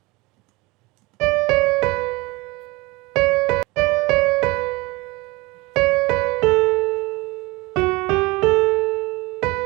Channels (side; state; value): left; quieter; 23.4 dB